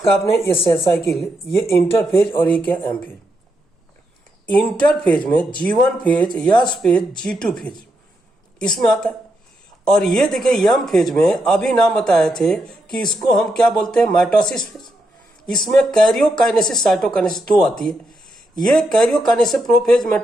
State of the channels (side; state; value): both; normal; correlation 0.82